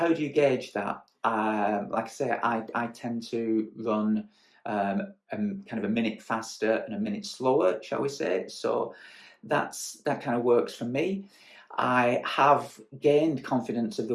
do you gauge that? Like I say, I tend to run kind of a minute faster and a minute slower, shall we say. So that kind of works for me. I have gained confidence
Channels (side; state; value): both; identical; correlation 1.00